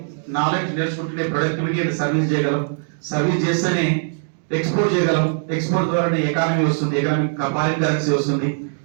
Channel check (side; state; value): left; silent; digital silence